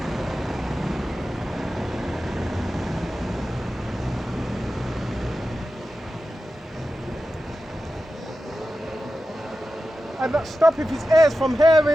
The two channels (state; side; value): normal; both; correlation 0.92